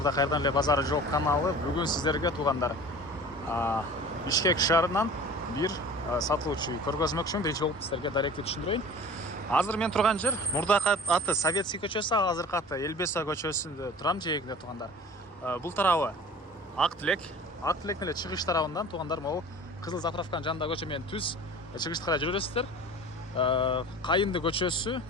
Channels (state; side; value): normal; both; correlation 0.41